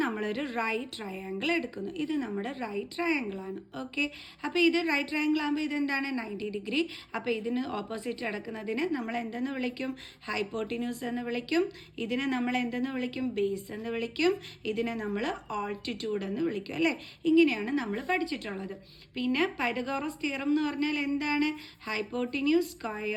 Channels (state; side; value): identical; both; correlation 1.00